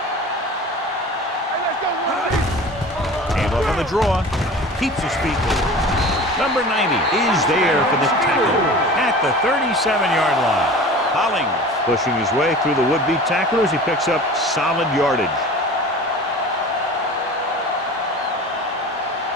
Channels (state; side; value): normal; both; correlation 0.39